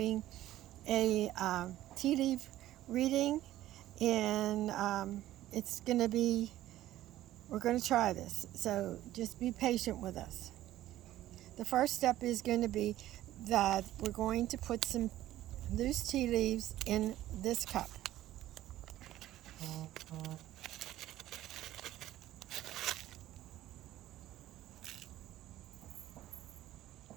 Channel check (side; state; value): left; quieter; 14.2 dB